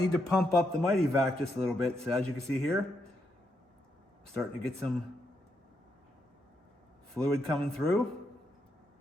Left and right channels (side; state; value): both; normal; correlation 0.80